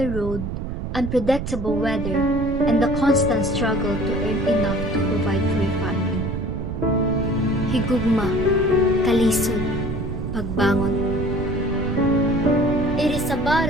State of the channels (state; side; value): noise; right; rumble, 5 dB below the sound